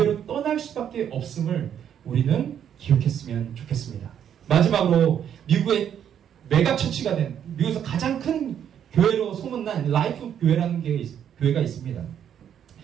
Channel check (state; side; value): quieter; left; 9.2 dB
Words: 떠날 수밖에 없음을 우리는 기억했으면 좋겠습니다. 마지막으로 미국의 메가처치가 된 미국에서 가장 큰 교회로 소문난 라이프 교회라는 교회가 있습니다.